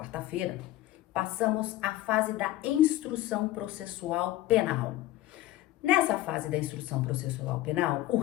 passamos à fase da instrução processual penal. Nessa fase da instrução processual penal, o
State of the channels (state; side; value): quieter; right; 15.4 dB